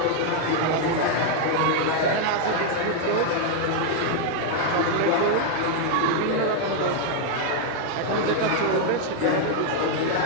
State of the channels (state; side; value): different; both; correlation 0.00